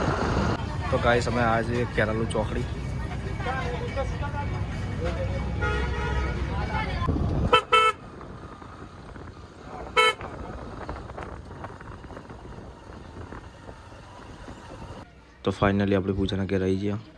તો ગાઈસ અમે આજે કેરાલુ ચોકડી. તો ફાઇનલી આપણે પૂજાના ઘેર આવી ગયા.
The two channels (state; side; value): identical; both; correlation 1.00